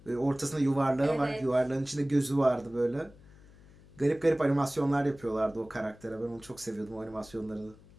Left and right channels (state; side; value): noise; left; hum, 23 dB below the sound